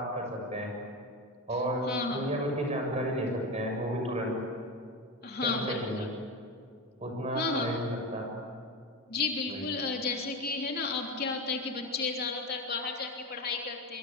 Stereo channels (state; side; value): normal; both; correlation 0.19